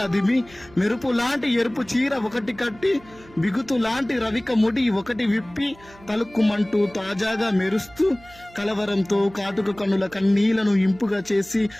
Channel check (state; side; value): noise; right; hum, 24 dB below the sound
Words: అదిమి, మెరుపు లాంటి ఎరుపు చీర ఒకటి కట్టి, బిగుతు లాంటి రవిక ముడి ఒకటి విప్పి, తలుక్కుమంటూ తాజాగా మెరుస్తూ, కలవరంతో కాటుక కన్నుల కన్నీళ్లను ఇంపుగా చేసి,